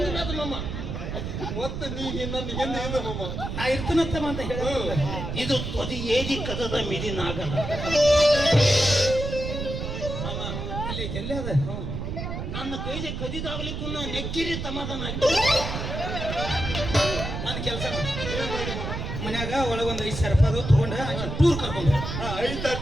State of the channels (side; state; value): right; noise; rumble, 5 dB below the sound